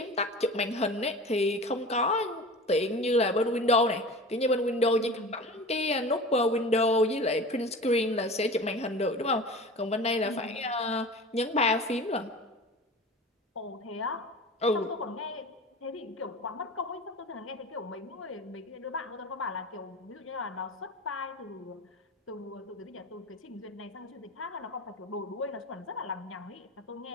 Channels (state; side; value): normal; both; correlation 0.35